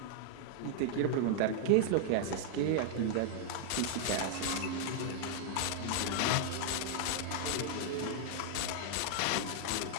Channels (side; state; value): both; different; correlation -0.01